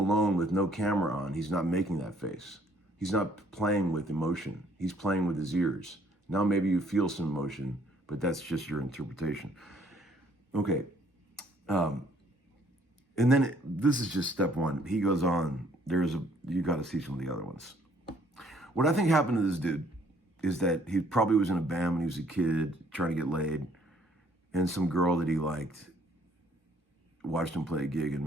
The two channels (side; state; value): both; normal; correlation 0.63